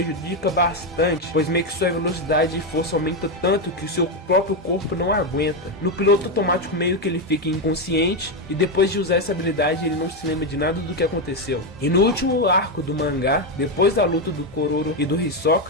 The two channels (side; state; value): both; normal; correlation 0.07